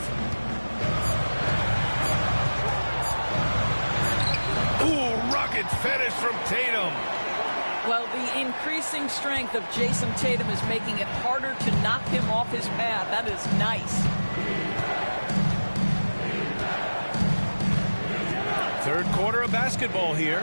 Ooh, rugged finish from Tatum. Well, the increasing strength of Jason Tatum is making it harder to knock him off his path. That is nice. Third quarter of basketball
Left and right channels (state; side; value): inverted; both; correlation -1.00